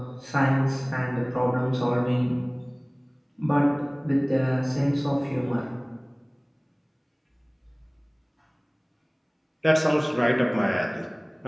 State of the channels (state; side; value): identical; both; correlation 1.00